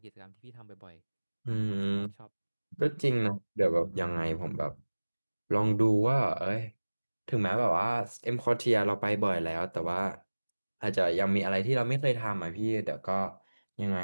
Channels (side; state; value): both; inverted; correlation -1.00